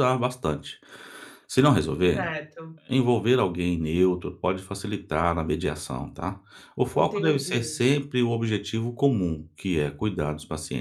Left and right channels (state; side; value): identical; both; correlation 1.00